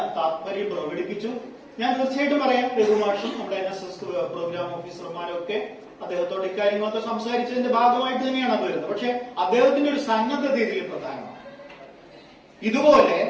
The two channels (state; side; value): identical; both; correlation 1.00